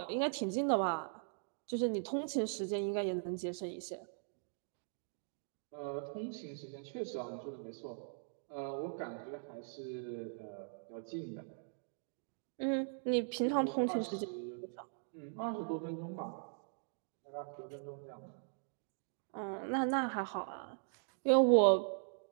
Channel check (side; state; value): left; silent; digital silence